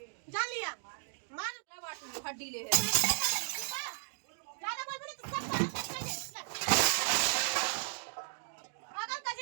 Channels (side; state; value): left; silent; digital silence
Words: जान लिया मार बाटू हड्डी ले है। ज्यादा बोल बोले तो सब अगर